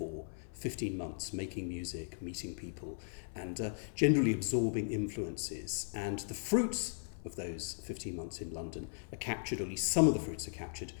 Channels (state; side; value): silent; right; 53 dB below the other